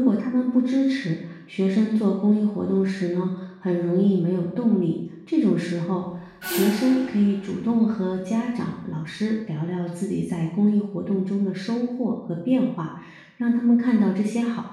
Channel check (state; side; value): identical; both; correlation 1.00